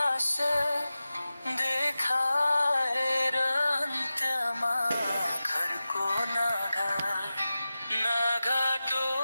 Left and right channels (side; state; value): both; inverted; correlation -0.95